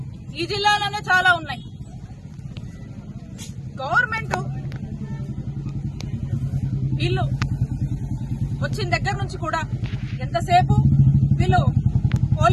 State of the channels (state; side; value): identical; both; correlation 1.00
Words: ఈ జిల్లాలోనే చాలా ఉన్నాయి. గవర్నమెంట్ వీళ్ళు వచ్చిన దగ్గర నుంచి కూడా ఎంతసేపు వీళ్ళు